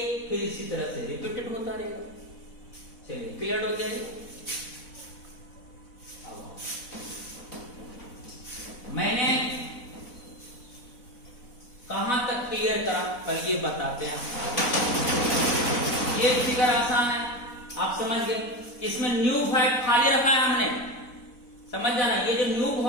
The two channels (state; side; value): late; right; 4.1 ms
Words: फिर इसी तरह से रिपीटेड होता रहेगा। चलिए क्लियर हो गया। मैंने कहां तक क्लियर करा पहले ये बताते हैं। ये फिगर आसान है, आप समझ गए। इसमें न्यू वॉइड खाली रखा है हमने, समझ जाना। ये जो न्यू